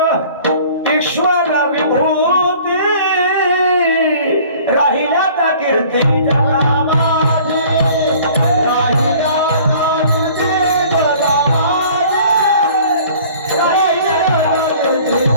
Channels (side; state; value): both; inverted; correlation -0.50